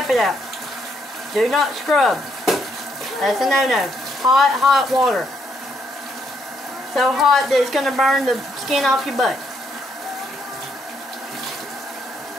it out. Do not scrub. That's a no-no. Hot, hot water. So hot that it's going to burn the skin off your butt.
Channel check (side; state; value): both; normal; correlation 0.74